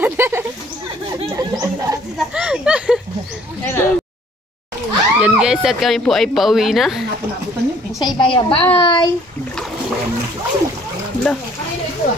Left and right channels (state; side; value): normal; both; correlation 0.58